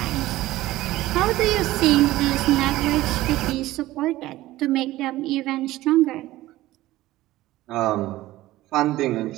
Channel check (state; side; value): quieter; left; 16.6 dB